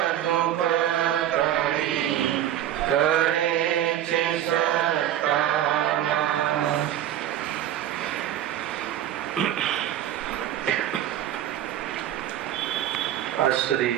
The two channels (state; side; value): quieter; left; 11.6 dB